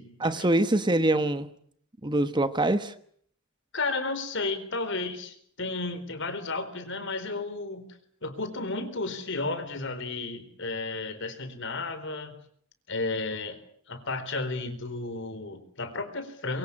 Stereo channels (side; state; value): both; normal; correlation 0.33